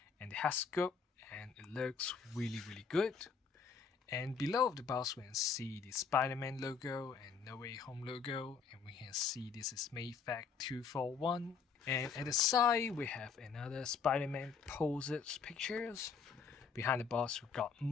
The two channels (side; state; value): right; quieter; 5.9 dB